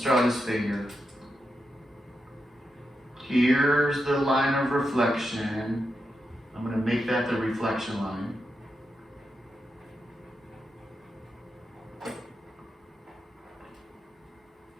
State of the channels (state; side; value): normal; both; correlation 0.86